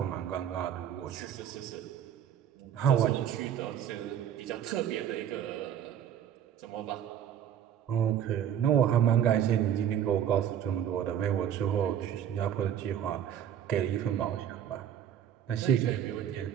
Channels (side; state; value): left; quieter; 9.6 dB